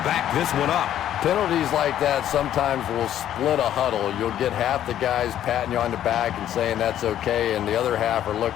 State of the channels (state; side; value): quieter; right; 11.2 dB